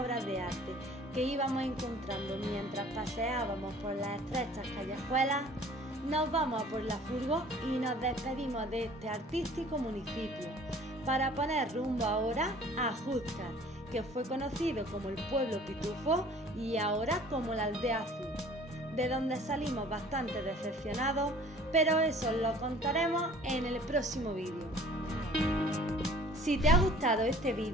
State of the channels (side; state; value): both; normal; correlation 0.51